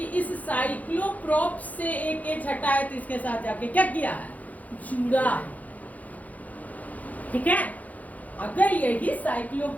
इस साइक्लोप्रोप से एक एच हटाया तो इसके साथ जाके क्या किया है, जुड़ा है। ठीक है, अगर यही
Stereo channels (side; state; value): right; late; 0.076 ms